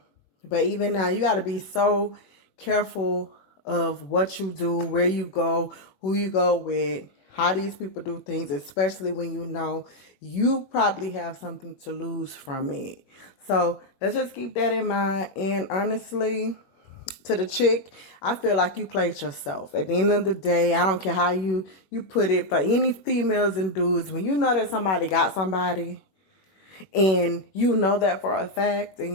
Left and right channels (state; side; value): late; right; 21 ms